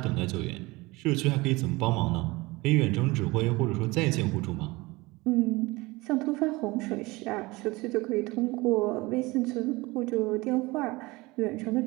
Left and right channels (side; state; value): left; quieter; 22.5 dB